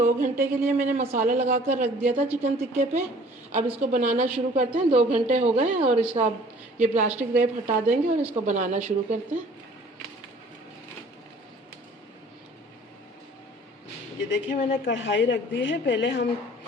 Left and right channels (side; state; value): both; normal; correlation 0.52